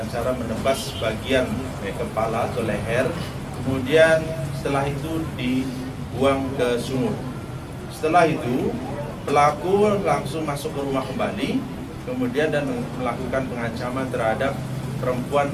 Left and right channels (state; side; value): identical; both; correlation 1.00